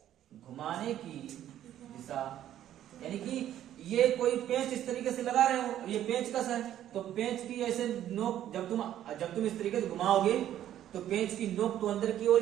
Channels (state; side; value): quieter; left; 11.7 dB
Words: घुमाने की दिशा, यानी कि ये कोई पेंच इस तरीके से लगा रहे हो, ये पेंच कस है, तो पेंच की ऐसे नोक जब तुम इस तरीके से घुमाओगे तो पेंच की नोक तो अंदर की